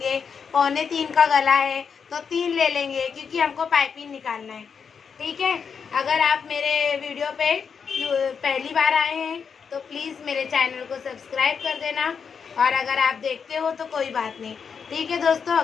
2.25 का गला है तो 3 ले लेंगे, क्योंकि हमको पाइपिंग निकालना है। ठीक है, अगर आप मेरे वीडियो पे पहली बार आए हैं तो प्लीज़ मेरे चैनल को सब्सक्राइब कर देना, और अगर आप देखते हो तो कोई बात नहीं। ठीक है दोस्तों,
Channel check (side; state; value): right; quieter; 6.3 dB